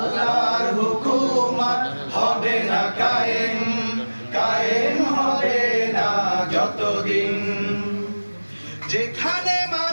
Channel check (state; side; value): inverted; both; correlation -1.00